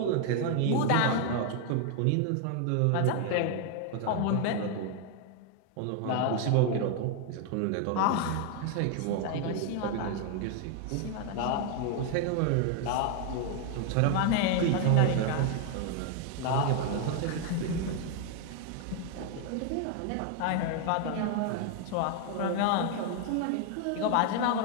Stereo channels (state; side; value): different; both; correlation 0.01